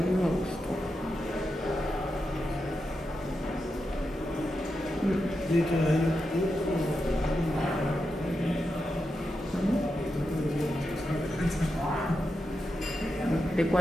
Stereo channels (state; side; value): normal; both; correlation 0.87